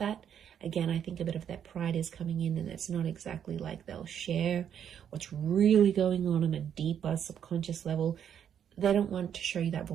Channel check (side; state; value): left; quieter; 8.8 dB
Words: Again, I think a bit of that pride is coming in, and it's not exactly like they'll share what's really going on a deeper subconscious level. They don't want to show you that